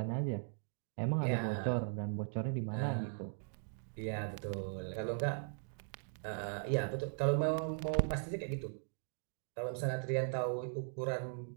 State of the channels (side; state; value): left; silent; digital silence